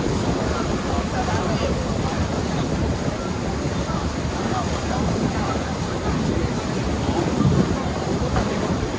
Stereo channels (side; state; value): both; identical; correlation 1.00